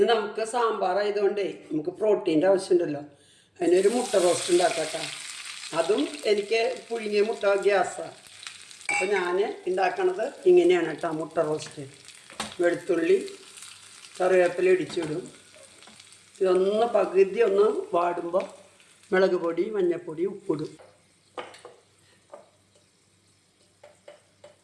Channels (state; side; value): identical; both; correlation 1.00